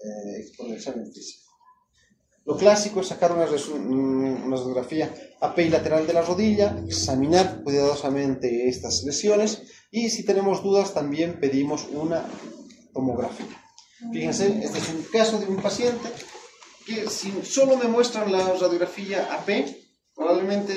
el examen físico. Lo clásico es sacar una radiografía API lateral de la rodilla, examinar cuidadosamente estas lesiones y si tenemos dudas también pedimos una tomografía. Fíjense, este es un caso de un paciente que si solo me muestran la radiografía AP,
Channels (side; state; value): both; identical; correlation 1.00